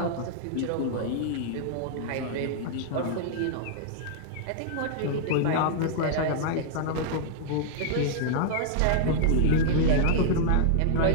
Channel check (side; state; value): both; different; correlation -0.01